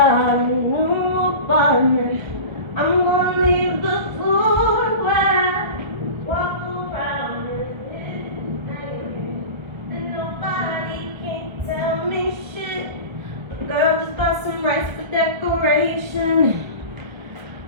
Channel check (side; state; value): left; late; 1.3 ms